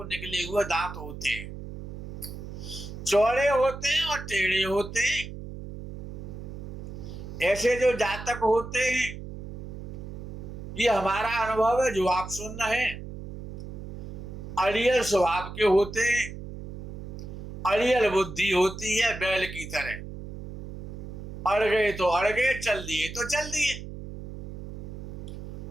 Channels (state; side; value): noise; right; hum, 10 dB below the sound